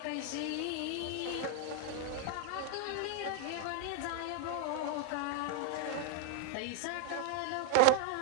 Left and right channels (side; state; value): both; different; correlation 0.00